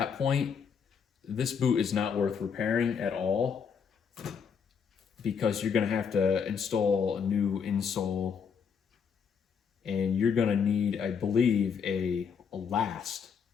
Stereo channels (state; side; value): quieter; right; 6.6 dB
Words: point, this boot is not worth repairing at all, because you're going to have to install a new insole, and you're going to need, I believe, a last